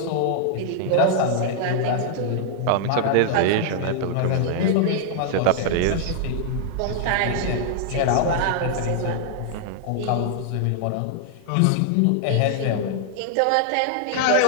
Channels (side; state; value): both; different; correlation -0.01